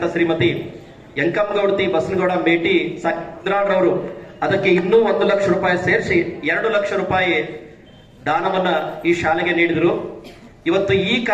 ಶ್ರೀಮತಿ ಯಂಕಮ್ಮಗೌಡತಿ ಬಸನಗೌಡ ಮೇಟಿ ಸಾಕಿದ್ರಾಡ್ರವರು ಅದಕ್ಕೆ ಇನ್ನೂ 1 ಲಕ್ಷ ರೂಪಾಯಿ ಸೇರಿಸಿ 2 ಲಕ್ಷ ರೂಪಾಯಿ ದಾನವನ್ನ ಈ ಶಾಲೆಗೆ ನೀಡಿದರು. ಇವತ್ತು ಈ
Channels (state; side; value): identical; both; correlation 1.00